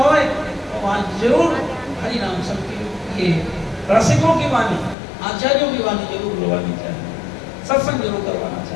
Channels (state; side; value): drops out; right; at 5.0 s